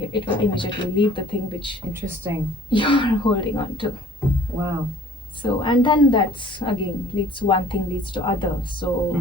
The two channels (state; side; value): normal; both; correlation 0.52